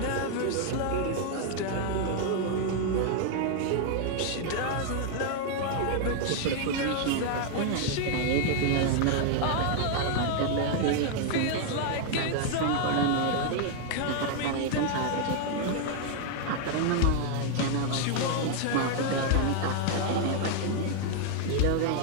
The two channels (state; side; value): different; both; correlation 0.00